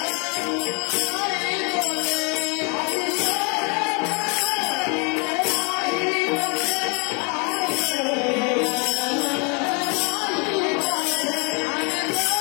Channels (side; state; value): right; quieter; 34.1 dB